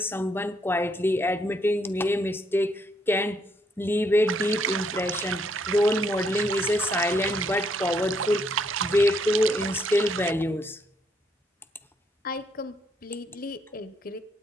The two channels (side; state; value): both; normal; correlation 0.72